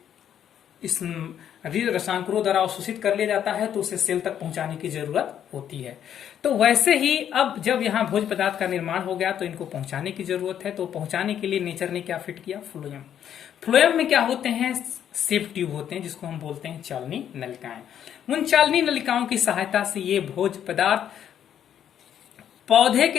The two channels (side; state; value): right; quieter; 9.7 dB